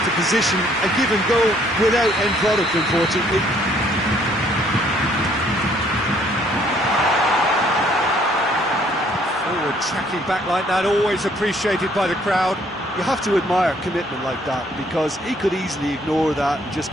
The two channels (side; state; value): both; normal; correlation 0.64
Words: position. A given goal without end product, unfortunately. Forward tracking back like that, always appreciated by the crowd. You have to admire commitment like that, because he could easily ignore that and just